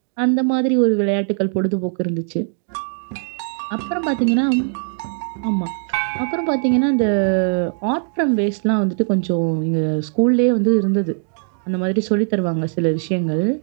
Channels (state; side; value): silent; left; 66 dB below the other